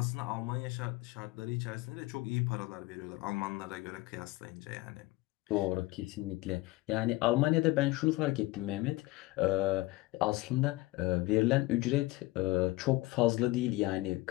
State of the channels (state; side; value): quieter; right; 20.3 dB